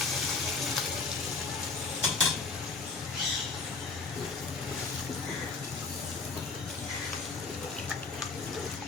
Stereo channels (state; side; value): quieter; right; 4.3 dB